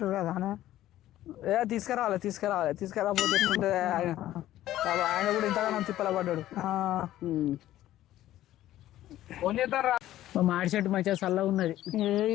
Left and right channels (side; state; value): right; quieter; 13.9 dB